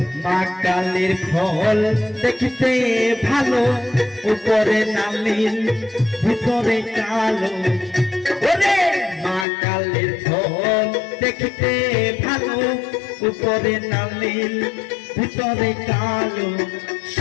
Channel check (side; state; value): right; drops out; at 9.5 s